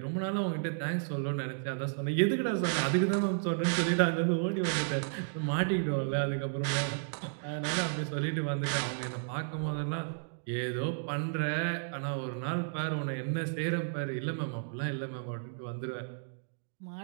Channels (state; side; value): silent; left; digital silence